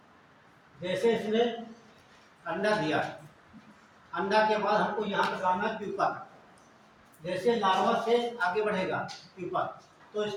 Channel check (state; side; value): identical; both; correlation 1.00